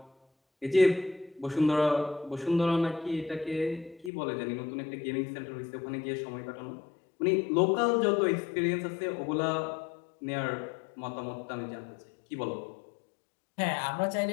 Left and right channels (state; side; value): drops out; right; at 4.1 s